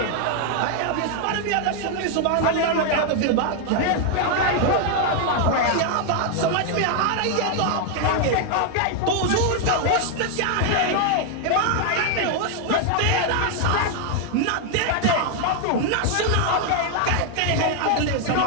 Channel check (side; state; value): both; different; correlation 0.00